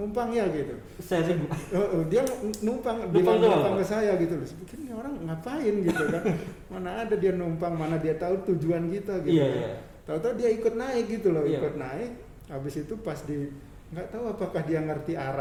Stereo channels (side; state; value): both; identical; correlation 1.00